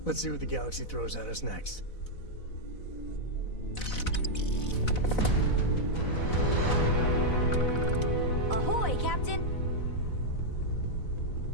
Let's see what the galaxy throws at us next. Ahoy, Captain!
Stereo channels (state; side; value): late; right; 4.0 ms